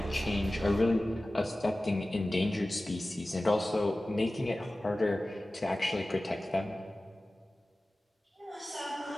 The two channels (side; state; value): both; normal; correlation 0.96